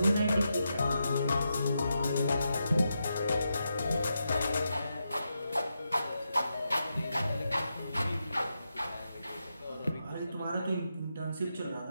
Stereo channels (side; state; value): both; inverted; correlation -0.86